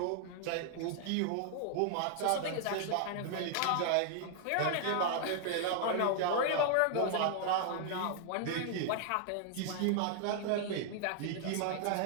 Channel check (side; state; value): both; different; correlation 0.00